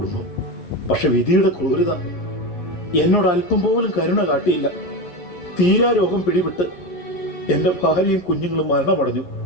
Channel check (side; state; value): right; late; 11 ms